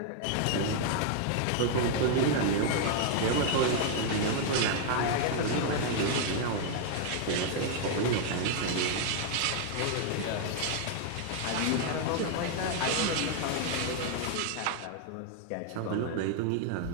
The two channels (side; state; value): both; different; correlation 0.00